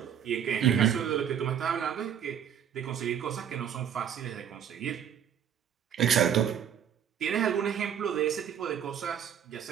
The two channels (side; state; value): left; quieter; 8.9 dB